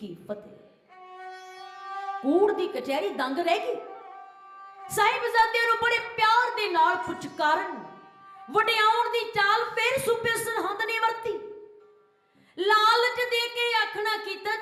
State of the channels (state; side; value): identical; both; correlation 1.00